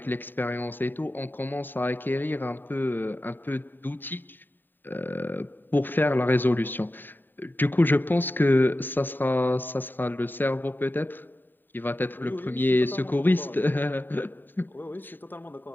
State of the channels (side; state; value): right; late; 0.092 ms